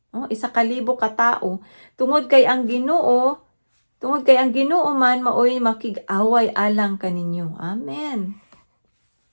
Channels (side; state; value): both; inverted; correlation -1.00